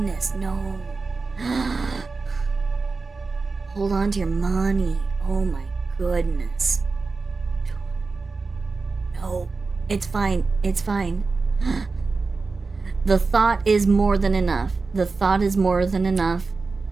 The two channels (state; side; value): quieter; left; 4.1 dB